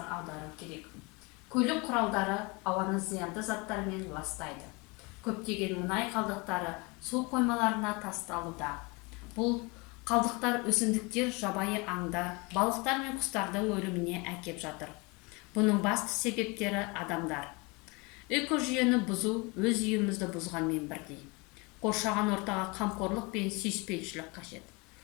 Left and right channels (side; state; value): right; quieter; 27.7 dB